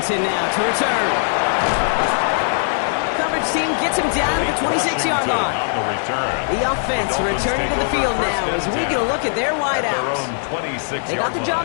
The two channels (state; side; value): silent; right; digital silence